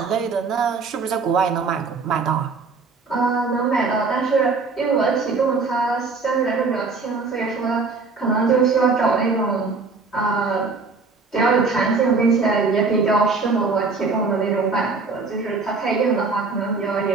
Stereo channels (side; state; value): left; quieter; 4.3 dB